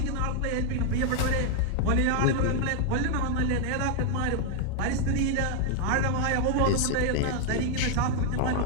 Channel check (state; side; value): different; both; correlation 0.00